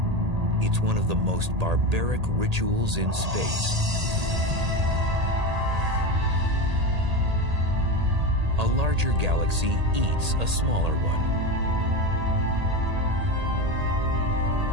It's one of the most barbaric rituals in space. A larger galaxy eats a smaller one.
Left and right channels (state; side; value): late; left; 1.8 ms